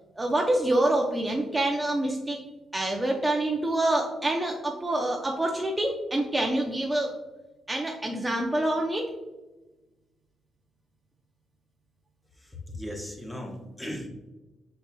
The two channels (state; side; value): normal; both; correlation 0.88